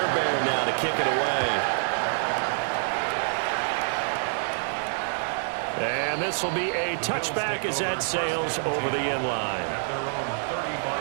now to kick it away. And this will be a touchback as that sails over the end line. At their own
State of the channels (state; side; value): silent; left; digital silence